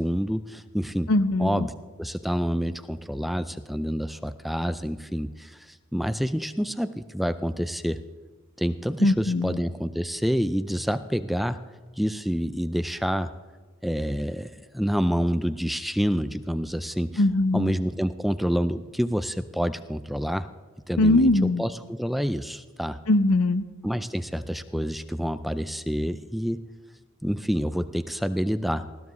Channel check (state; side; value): normal; both; correlation 0.83